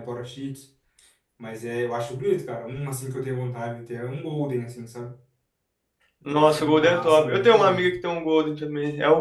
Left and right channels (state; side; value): identical; both; correlation 1.00